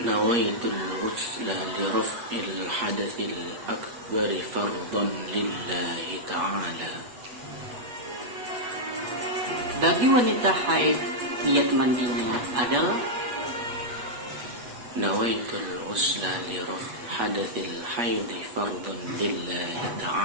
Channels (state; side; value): late; left; 8.3 ms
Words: الغسل لرفع الحدث الأكبر فرضا لله تعالى. Bagi wanita haid, niat mandinya adalah نويت الغسل لرفع حدث الحيض فرضا لله